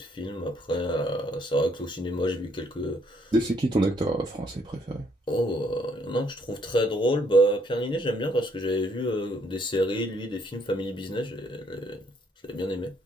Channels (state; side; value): normal; both; correlation 0.68